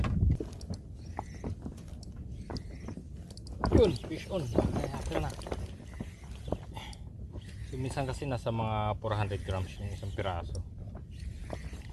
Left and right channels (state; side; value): identical; both; correlation 1.00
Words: Yun, fish on. Kaya na. So, minsan kasi nasa mga 400 grams yung isang piraso.